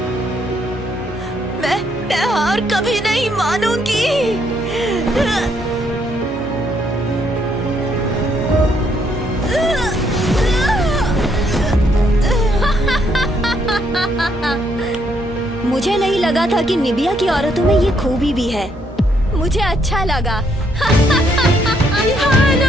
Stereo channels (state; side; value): normal; both; correlation 0.72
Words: मैं हार कभी नहीं मानूंगी। मुझे नहीं लगा था कि निबिया की औरतों में ये खूबी भी है। मुझे अच्छा लगा।